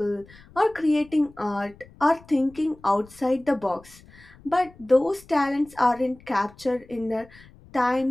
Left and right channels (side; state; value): left; noise; rumble, 24 dB below the sound